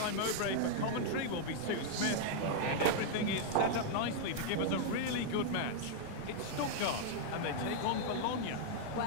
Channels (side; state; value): both; different; correlation -0.01